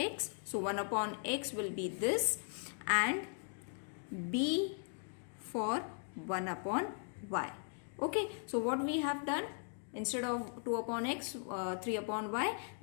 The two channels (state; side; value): silent; right; 52 dB below the other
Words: So 1 upon x will be this, and b for 1 upon y. Okay, so what we have done, instead of 2 upon x, 3 upon y,